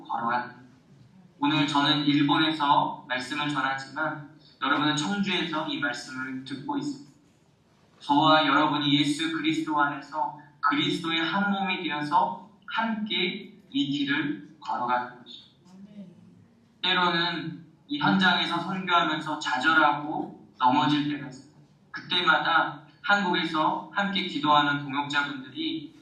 걸어가는 길. 오늘 저는 일본에서 말씀을 전하지만 여러분은 청주에서 이 말씀을 듣고 있습니다. 저와 여러분이 예수 그리스도 안에서 그리스도의 한 몸이 되어서 함께 이 길을 걸어가는 것입니다. 때로는 이 현장에서 선교하면서 좌절하고 넘어질 때가 있습니다. 그때마다 한국에서 함께 기도하는 동역자분들이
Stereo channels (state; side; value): identical; both; correlation 1.00